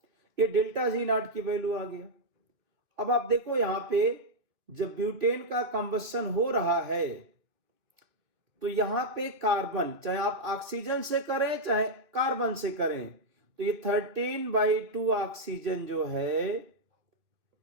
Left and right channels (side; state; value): left; late; 3.0 ms